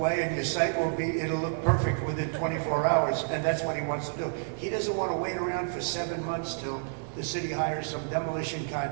and your site will be, it'll look perfect within 24 hours, and that's what he wants to do. He doesn't want to wait around for 7 months till the city hires some demolition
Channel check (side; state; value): left; silent; digital silence